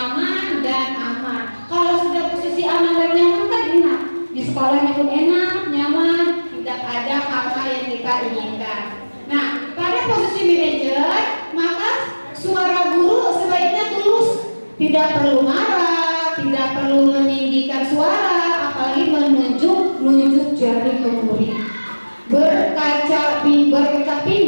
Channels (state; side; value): inverted; both; correlation -1.00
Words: dan aman. Kalau sudah posisi aman dan nyaman kan enak, di sekolahnya pun enak, nyaman, tidak ada hal-hal yang kita inginkan. Nah, pada posisi manajer, maka suara guru sebaiknya tulus, tidak perlu marah, tidak perlu meninggikan suara, apalagi menunjuk jari ke murid, berkaca